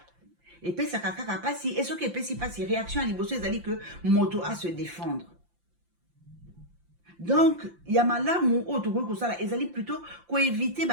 Et puis ça kaka pasi et ce que pesi pasi réaction à liboso ezali que moto à se défendre. Donc yamalamu o to ko sala ezali plutôt ko éviter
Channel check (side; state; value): left; late; 5.8 ms